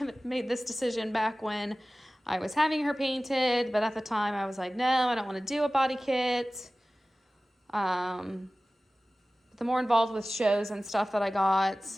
made this decision back when I was having her painted, but at the time I was like, no, I don't want to do a body kit. The more involved with shows and stuff that I got,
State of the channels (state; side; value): normal; both; correlation 0.97